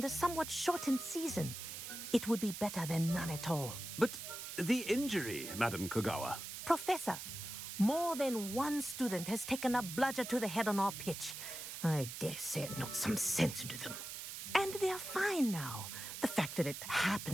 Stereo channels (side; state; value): right; noise; hiss, 8 dB below the sound